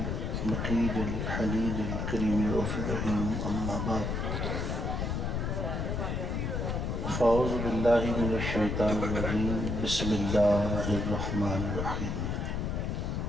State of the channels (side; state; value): left; noise; rumble, 1 dB below the sound